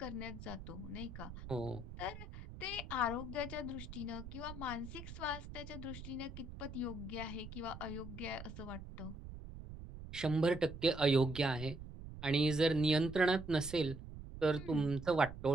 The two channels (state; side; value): noise; right; rumble, 11 dB below the sound